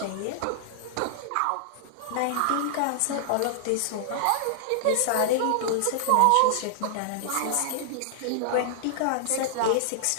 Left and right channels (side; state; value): both; different; correlation -0.01